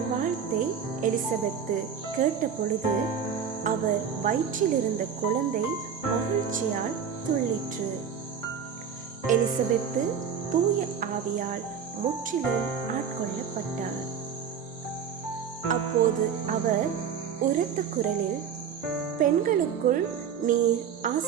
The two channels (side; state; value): left; quieter; 7.3 dB